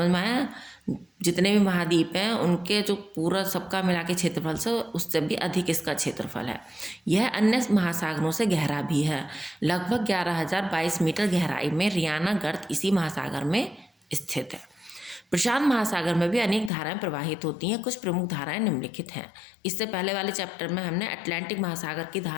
में आया? जितने भी महाद्वीप हैं उनके जो पूरा सबका मिला के क्षेत्रफल से उससे भी अधिक इसका क्षेत्रफल है। यह अन्य महासागरों से गहरा भी है। लगभग 11,022 मीटर गहराई में रियाना गर्त इसी महासागर में स्थित है। प्रशांत महासागर में भी अनेक धाराएं प्रवाहित होती हैं। कुछ प्रमुख धाराएं निम्नलिखित हैं। इससे पहले वाले चैप्टर में हमने अटलांटिक महासागर की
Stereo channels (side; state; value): right; drops out; at 16.7 s